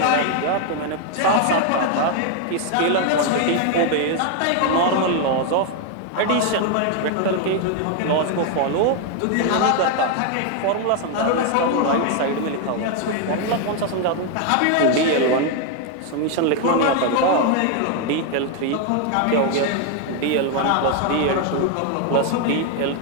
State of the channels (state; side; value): different; both; correlation 0.01